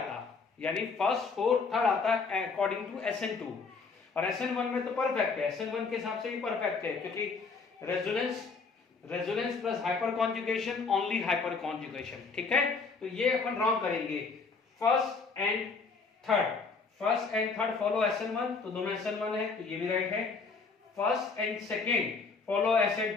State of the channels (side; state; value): right; quieter; 4.7 dB